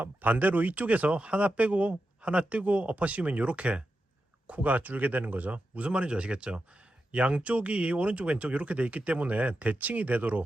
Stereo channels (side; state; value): both; normal; correlation 0.89